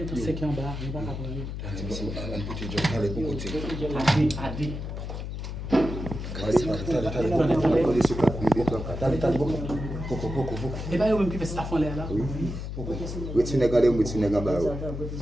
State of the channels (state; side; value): noise; left; hum, 6 dB below the sound